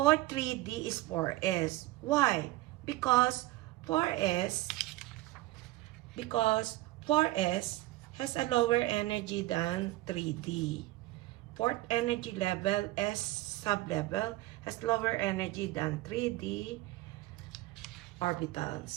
3D is 4S. Why? Because 4S has a lower energy than 3D. Fourth energy level, S sublevel, has lower energy than 3D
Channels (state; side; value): quieter; left; 18.1 dB